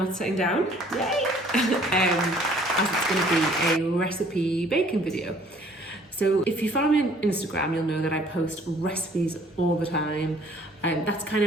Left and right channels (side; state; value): both; normal; correlation 0.57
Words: sitting down, yay! As it's going to be a recipe baking video. So if you follow me on Instagram, you'll know that I post recipes all the time. That's kind